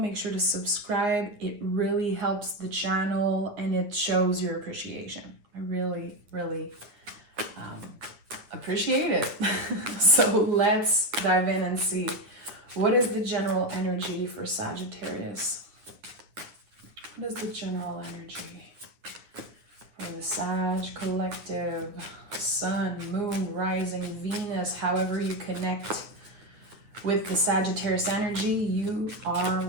sure to subscribe. It really helps the channel and it shows your appreciation. I really appreciate it. So let's dive in and see. What is the general energy for Sagittarius? What is the general energy for the Sag collective? Sun, moon, rising, Venus, however you connect with the Sagittarius energy, you are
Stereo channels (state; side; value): late; left; 9.7 ms